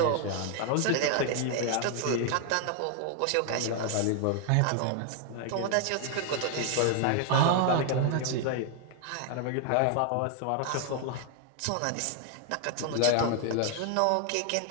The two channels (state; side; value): different; both; correlation 0.00